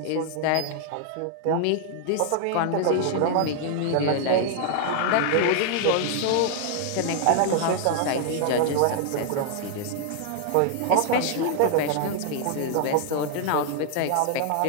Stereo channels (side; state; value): both; different; correlation 0.00